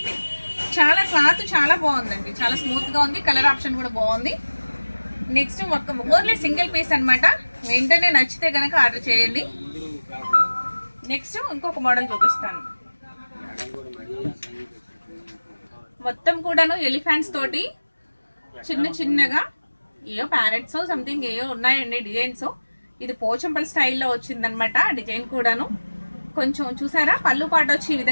చాలా క్లాత్ చాలా బాగుందండి. చాలా స్మూత్గా ఉంది. కలర్ ఆప్షన్ కూడా బాగుంది. నెక్స్ట్ ఓన్లీ సింగిల్ పీస్ అనమాట. వెంటనే నచ్చితే కనుక ఆర్డర్ చేయండి. నెక్స్ట్ ఇంకొక మోడల్ చూపిస్తాను. మొత్తం కూడాను ఎలిఫెంట్స్ తోటి చిన్న చిన్నగా ఏయో ప్యారెట్స్ సంథింగ్ ఏయో ఉన్నాయండి డిజైన్స్. ఇది పోచంపల్లి స్టైల్లో వచ్చిందనమాట డిజైన్ కూడాను. కొంచెం చూసారా, పళ్ళు పాట వచ్చి ఈ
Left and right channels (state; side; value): inverted; both; correlation -1.00